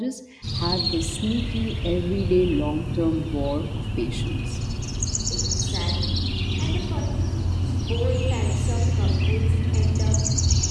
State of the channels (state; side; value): identical; both; correlation 1.00